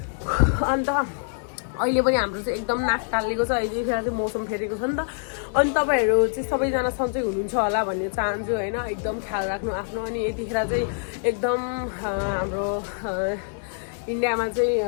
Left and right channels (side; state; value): right; silent; digital silence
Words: अन्त अहिले पनि हाम्रो चाहिँ एकदम नाक टालिएको छ, यतिखेर चाहिँ मौसम फेरेको छ नि त। अनि तपाईँहरू चाहिँ सबैजना सन्चै हुनुहुन्छ होला भन्ने चाहन्छु होइन। एकदम ख्याल राख्नु आफ्नो। अनि यतिखेर चाहिँ एकदम हाम्रो इन्डियामा चाहिँ